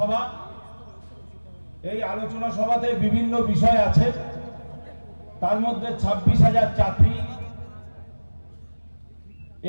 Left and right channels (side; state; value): both; inverted; correlation -1.00